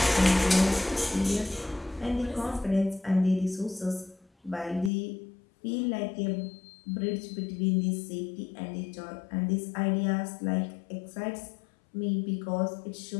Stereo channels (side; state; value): right; drops out; at 4.9 s